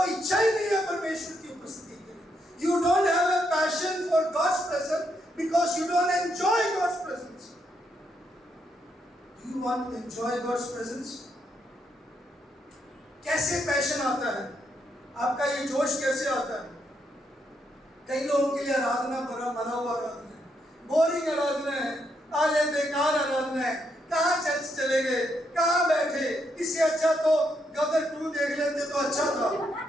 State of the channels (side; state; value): both; normal; correlation 0.78